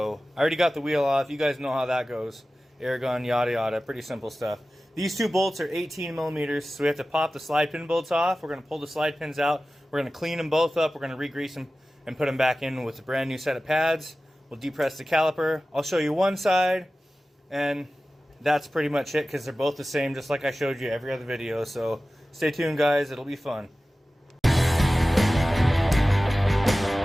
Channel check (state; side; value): normal; both; correlation 0.96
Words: I already got the wheel off. You guys know how that goes. Air gun, yada yada. Pretty simple stuff. These two bolts are 18 millimeters, so we have to pop the slide pin bolts off. We're going to pull the slide pins out. We're going to clean them both up. We're going to re-grease them and put them back in with a brand new set of pads. We'll depress the caliper. I'll show you one side, and that's pretty much it because they're both the same, just like I showed you every other video. So stay tuned, guys. It'll be fun.